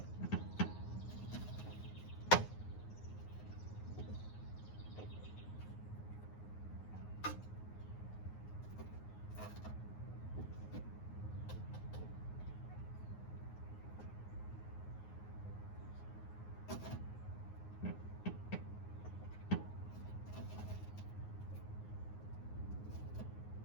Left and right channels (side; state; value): right; late; 9.5 ms